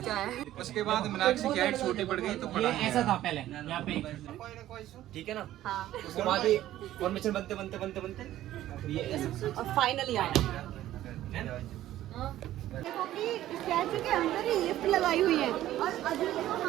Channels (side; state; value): left; quieter; 13.7 dB